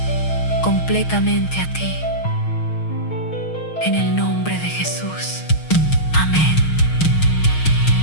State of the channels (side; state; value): right; late; 6.4 ms